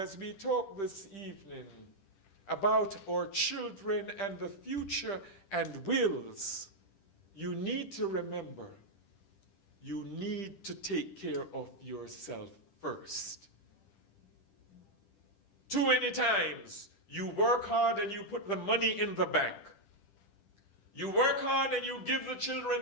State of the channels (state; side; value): late; right; 10 ms